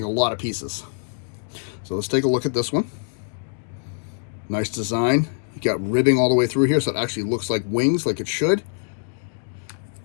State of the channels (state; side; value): silent; right; digital silence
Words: a lot of pieces. So let's take a look at this one. Nice design. You got ribbing all the way through here, so it actually looks like wings, like it should.